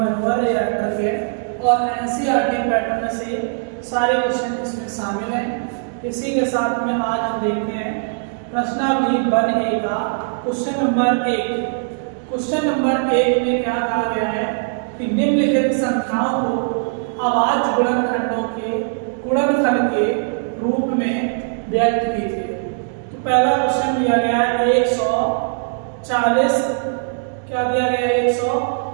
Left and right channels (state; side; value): silent; left; digital silence